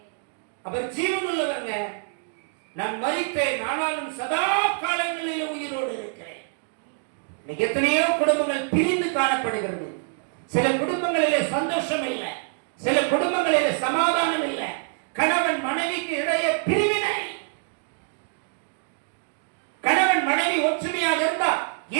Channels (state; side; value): silent; left; 61 dB below the other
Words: அவர் ஜீவனுள்ளவர்ங்க. நான் மரித்தேன், ஆனாலும் சதா காலங்களில் உயிரோடு இருக்கிறேன். எத்தனையோ குடும்பங்கள் பிரிந்து காணப்படுகிறது. சில குடும்பங்களிலே சந்தோஷம் இல்லை, சில குடும்பங்களிலே சமாதானம் இல்லை. கணவன் மனைவிக்கு இடையே பிரிவினை. கணவன் மனைவி ஒற்றுமையாக இருந்தால்